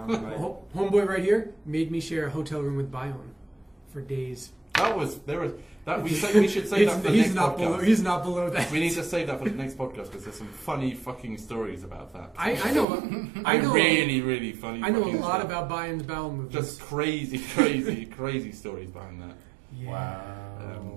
like, Homeboy right here made me share a hotel room with Bion for days. We should save that for the he's next not podcast. below. He's not below that. We need to save that for the next podcast because there's some funny fucking stories about that. I know. Really, really funny. I know a fucking lot stories. about Bion's bowel movements. Just crazy stories behind that. Yeah. Wow.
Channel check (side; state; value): left; drops out; at 12.9 s